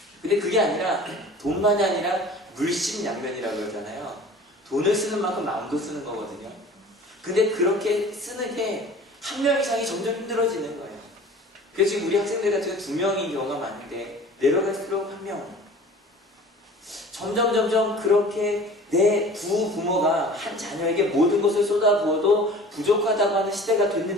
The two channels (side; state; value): both; normal; correlation 0.44